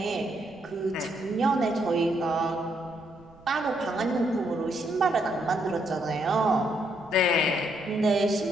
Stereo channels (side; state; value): right; noise; rumble, 25 dB below the sound